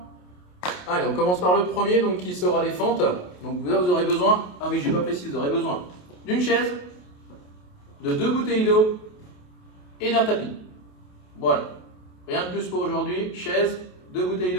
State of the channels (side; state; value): right; late; 28 ms